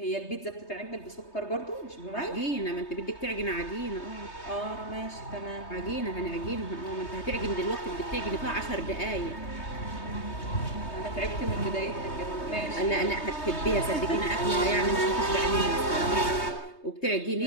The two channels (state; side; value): late; right; 3.2 ms